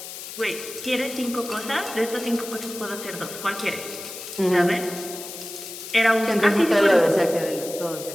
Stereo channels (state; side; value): noise; left; hiss, 11 dB below the sound